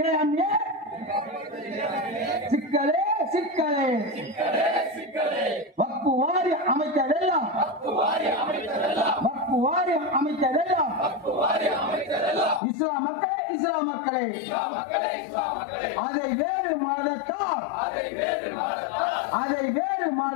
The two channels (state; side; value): drops out; right; at 12.6 s